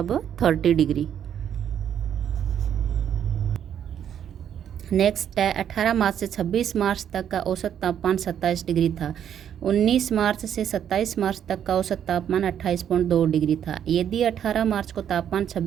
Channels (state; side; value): quieter; left; 9.3 dB